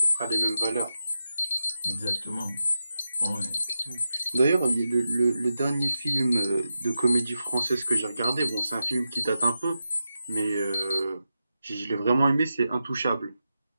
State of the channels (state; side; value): inverted; both; correlation -0.90